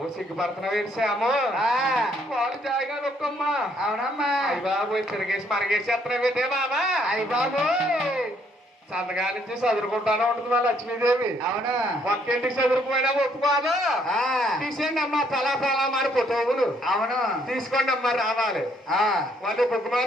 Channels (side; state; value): both; normal; correlation 0.68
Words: సిగ్గుపడుతున్నావు ఏడ్చాము. పాలు తాగా నొక్కమ్మా. అవునమ్మా. అయ్య బాబు తిరిగేసి మనగేసేస్తున్నావు ఏంటే బాబా. అయ్య బాబు సంతగా నుంచి చదువుకుంటానే ఉంటుంది మా లక్ష్మీదేవి. అవును. ఒక్కింటికి చదువుకుపోయినా ఒప్పుకోదు. తీసేయండి అమ్మా తలా తలా మారి ఫోటోలు. అవును. తీసుకోండి అమ్మా రావాలి. వాళ్ళు